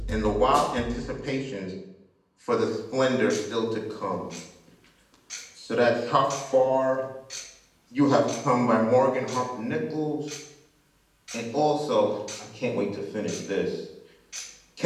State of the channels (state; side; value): identical; both; correlation 1.00